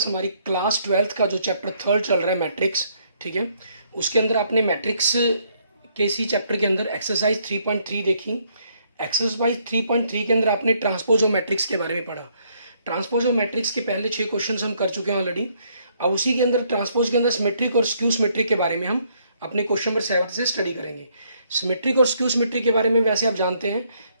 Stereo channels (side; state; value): both; inverted; correlation -0.69